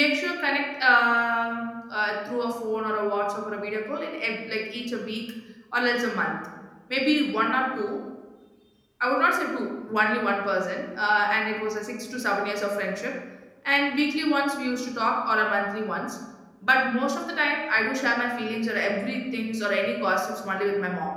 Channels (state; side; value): identical; both; correlation 1.00